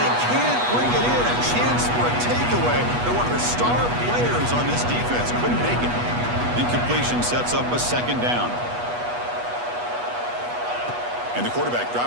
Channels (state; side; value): late; left; 8.2 ms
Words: can't bring it in. A chance for a takeaway. They're one of the star players on this defense. Couldn't make it. Incompletion sets up a second down. And the quarterback